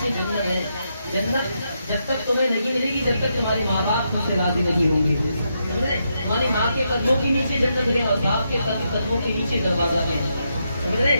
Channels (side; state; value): both; inverted; correlation -0.82